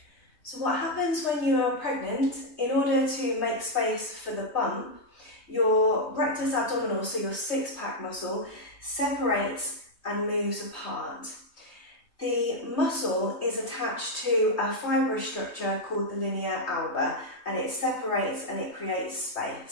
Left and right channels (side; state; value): right; late; 3.2 ms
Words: So what happens when you are pregnant, in order to make space for the bump, your rectus abdominal, so your six-pack muscle, separates and moves apart. The muscle is attached to a fibrous structure called the linea alba, and it separates and it creates